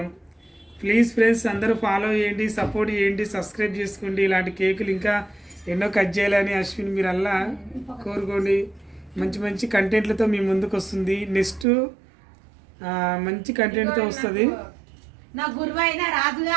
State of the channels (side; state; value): left; drops out; at 11.7 s